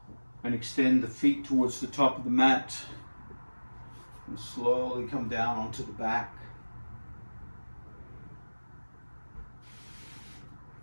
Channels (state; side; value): inverted; both; correlation -1.00